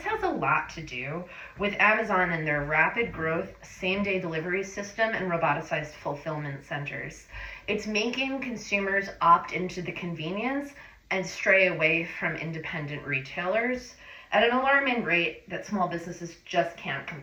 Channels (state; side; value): identical; both; correlation 1.00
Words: has a lot to do with Amazon and their rapid growth, same day delivery system, and roboticized fulfillment centers. It's making consumers opt into the convenience and stray away from independent retailers at an alarming rate that small businesses just can't